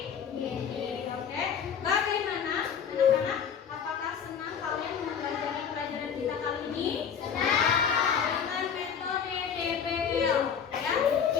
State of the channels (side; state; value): right; quieter; 7.4 dB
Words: Bagaimana anak-anak? Apakah senang kalian mempelajari pelajaran kita kali ini? Dengan metode DBL. Ya,